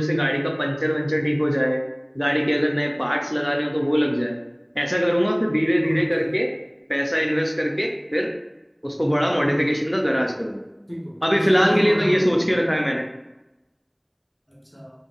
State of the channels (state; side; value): identical; both; correlation 1.00